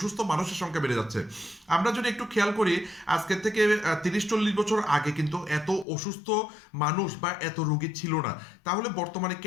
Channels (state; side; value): drops out; right; at 5.9 s